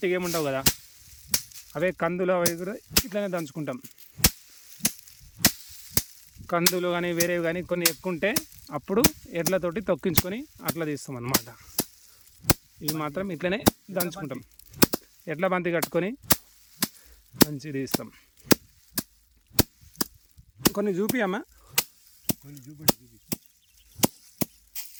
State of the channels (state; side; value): identical; both; correlation 1.00